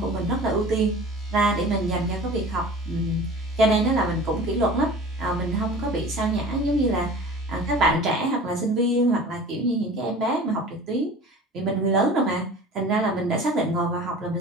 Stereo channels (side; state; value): both; normal; correlation 0.40